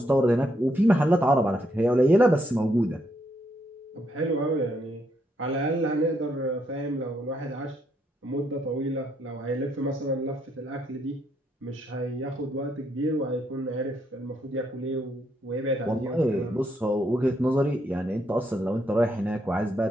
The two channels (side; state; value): both; normal; correlation 0.75